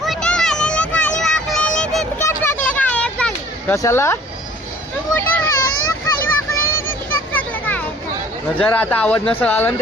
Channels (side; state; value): both; normal; correlation 0.52